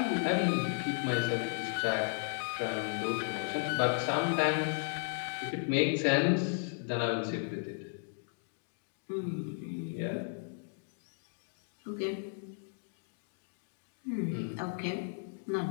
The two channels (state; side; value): silent; right; digital silence